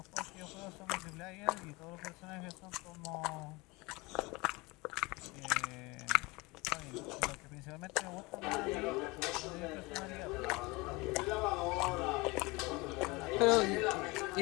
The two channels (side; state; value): right; quieter; 24.3 dB